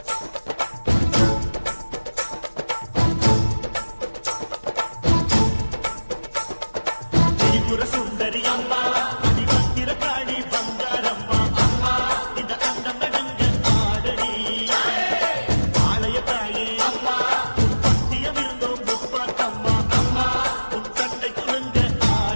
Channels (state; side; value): inverted; both; correlation -1.00